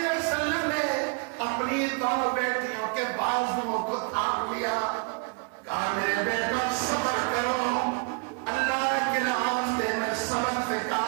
وسلم نے اپنی دونوں بیٹیوں کے بازوؤں کو تھام لیا. کہا میرے بیٹا صبر کرو, اللہ کے راستے میں صبر سے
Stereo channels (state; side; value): quieter; left; 34.7 dB